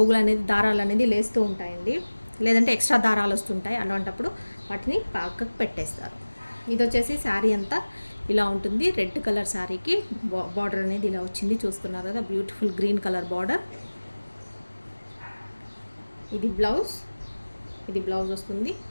అనేది దారాలు అనేది లేస్తూ ఉంటాయండి, లేదంటే ఎక్స్ట్రా దారాలు వస్తుంటాయి. అలాంటప్పుడు వాటిని పక్కకు పెట్టేస్తారు. ఇది వచ్చేసి శారీ అంతా ఇలా ఉంటుంది. రెడ్ కలర్ శారీకి బార్డర్ అనేది ఇలా వచ్చింది, చూస్తున్నారు కదా, బ్యూటిఫుల్ గ్రీన్ కలర్ బార్డర్. ఇది బ్లౌజ్ వస్తుంది.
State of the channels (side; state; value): both; inverted; correlation -1.00